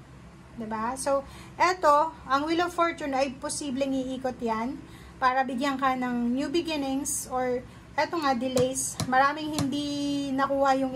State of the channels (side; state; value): both; identical; correlation 1.00